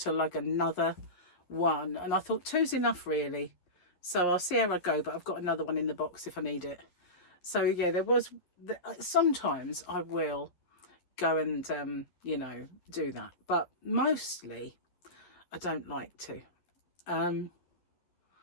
lug another one. And I thought 2's enough, really. So I'll see how I go, but I've got another one in the box if I need it. So yeah, sometimes I will go and, you know, do that. But mostly I don't like to. And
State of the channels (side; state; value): right; late; 11 ms